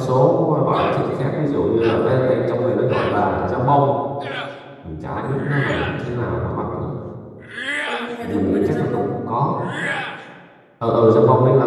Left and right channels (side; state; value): both; identical; correlation 1.00